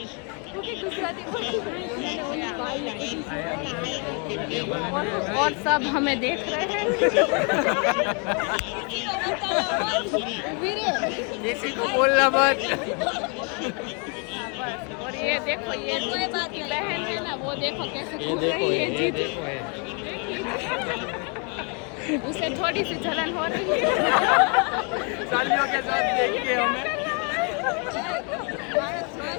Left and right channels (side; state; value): right; quieter; 36.2 dB